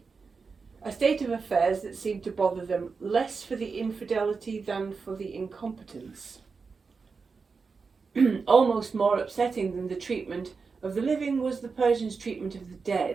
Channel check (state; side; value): quieter; left; 4.9 dB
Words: a state of affairs that seemed to bother them less for the infidelity than for the incompetence. Almost more upsetting than the treatment of the living was the Persians' treatment of the